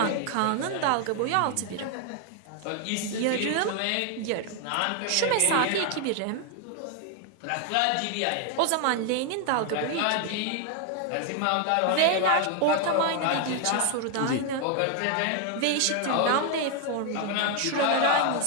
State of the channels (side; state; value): both; different; correlation 0.00